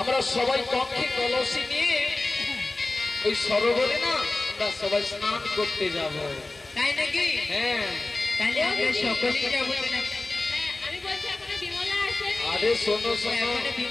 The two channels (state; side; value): quieter; right; 3.1 dB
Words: সবাই কক্ষে কলসি নিয়ে ওই সরোবরে না আমরা সবাই স্নান করতে যাব। তাই নাকি? হ্যাঁ, তাহলে আমরা সকলেই যাব। আমি বলছি এখনো বিমলা আসেনি। আরে শোনো শোনো, এখনো